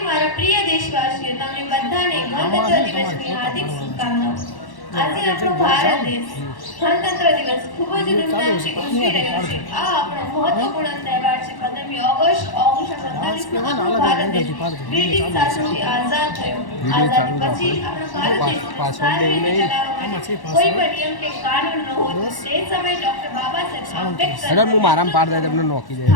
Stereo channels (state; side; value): late; right; 1.1 ms